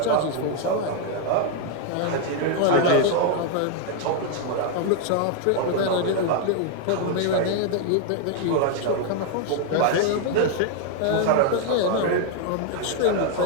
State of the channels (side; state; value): both; different; correlation 0.00